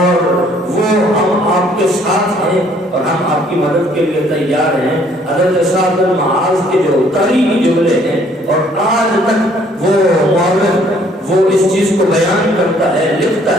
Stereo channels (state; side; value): normal; both; correlation 0.62